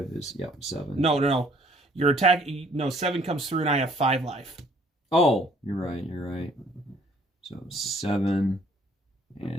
is 7. No. Your attack. No, 7 comes through, and I have 5 life. Oh, you're right. So 7,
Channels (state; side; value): normal; both; correlation 0.60